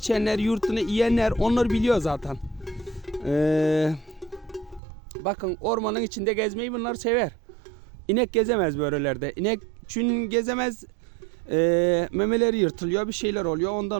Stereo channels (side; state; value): left; drops out; at 4.8 s